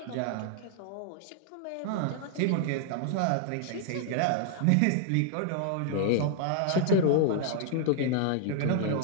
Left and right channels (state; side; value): different; both; correlation 0.00